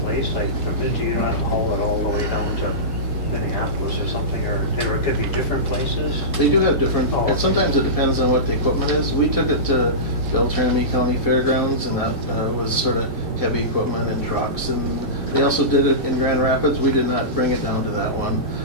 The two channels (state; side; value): normal; both; correlation -0.19